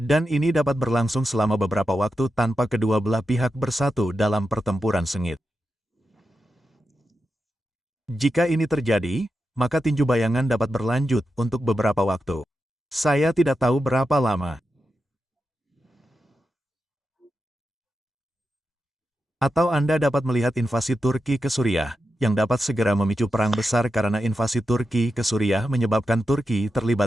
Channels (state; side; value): normal; both; correlation 0.89